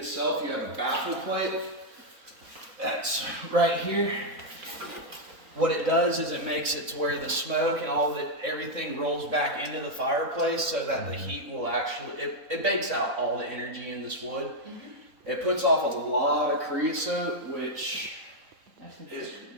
you have a baffle plate. That's right here. What it does is it makes it to where the smoke and everything rolls back into the fireplace so that the heat will it bakes out all the energy in this wood. It puts off a lot of creosote, which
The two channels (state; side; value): late; left; 4.0 ms